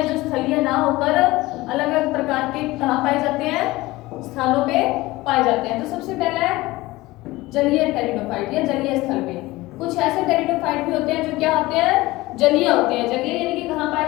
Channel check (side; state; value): right; quieter; 19.6 dB